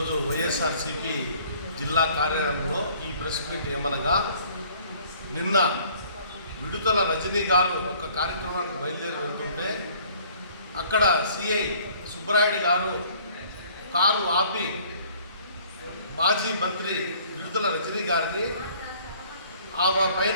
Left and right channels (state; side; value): inverted; both; correlation -0.56